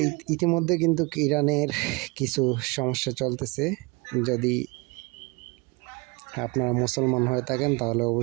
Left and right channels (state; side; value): quieter; left; 26.5 dB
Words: ইতিমধ্যে কিন্তু ইরানের কিছু সমস্যা চলতেছে। যদি আপনারা মুসলমান হয়ে থাকেন তাহলে